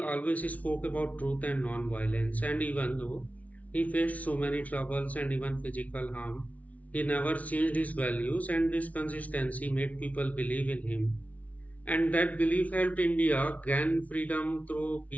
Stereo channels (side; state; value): right; late; 0.069 ms